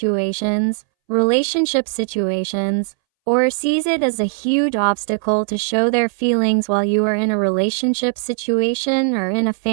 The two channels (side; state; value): left; silent; 64 dB below the other